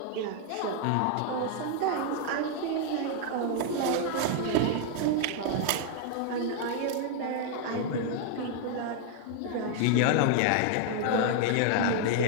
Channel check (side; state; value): both; different; correlation 0.00